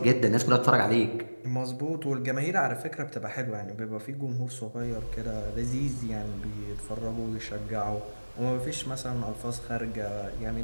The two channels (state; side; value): inverted; both; correlation -1.00